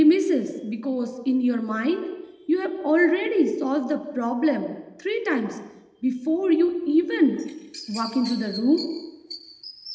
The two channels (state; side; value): identical; both; correlation 1.00